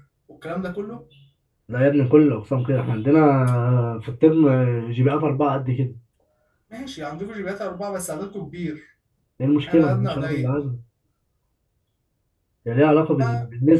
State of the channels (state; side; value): identical; both; correlation 1.00